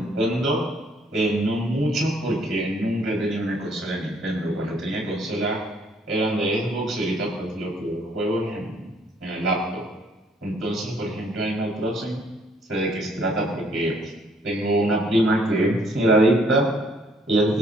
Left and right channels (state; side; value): normal; both; correlation 0.64